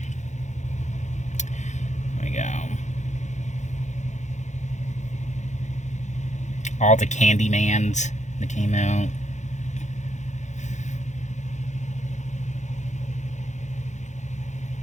There we go. All the Candymans that came out.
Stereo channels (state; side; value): late; right; 0.34 ms